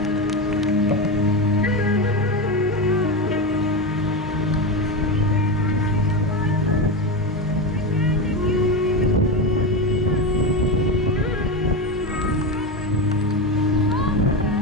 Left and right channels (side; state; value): both; normal; correlation 0.16